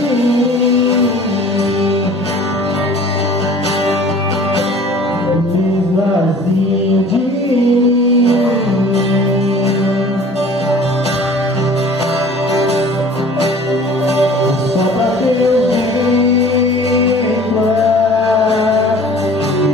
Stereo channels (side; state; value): both; normal; correlation 0.47